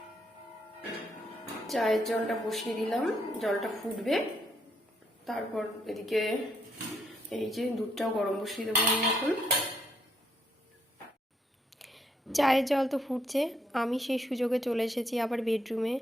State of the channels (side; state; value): both; normal; correlation 0.74